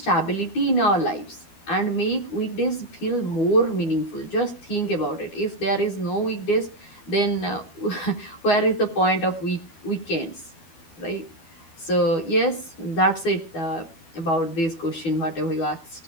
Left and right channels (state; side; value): late; right; 12 ms